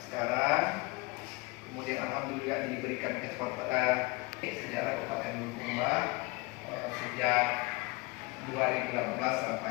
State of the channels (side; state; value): right; quieter; 25.4 dB